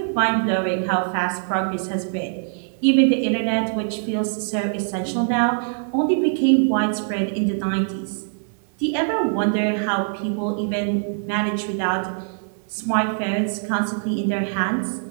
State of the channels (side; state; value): left; silent; digital silence